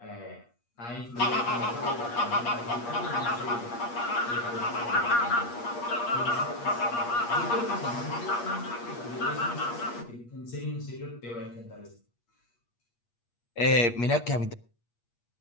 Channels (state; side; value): late; right; 8.5 ms